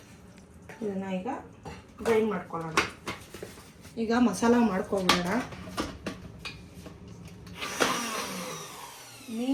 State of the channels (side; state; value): both; identical; correlation 1.00